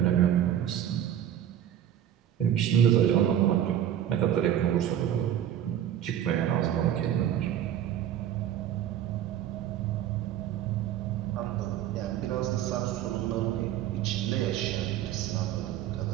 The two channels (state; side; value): quieter; left; 10.8 dB